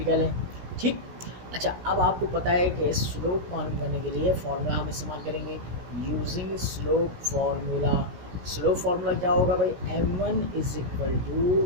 का लें, ठीक। अच्छा, अब आपको पता है कि स्लोप मालूम करने के लिए फार्मूला हम इस्तेमाल करेंगे, using slope formula. Slope formula क्या होगा भाई, M1 = y2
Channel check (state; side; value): late; left; 17 ms